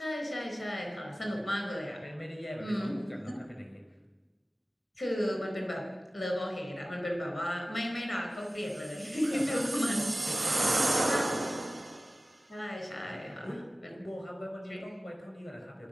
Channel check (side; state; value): both; normal; correlation 0.96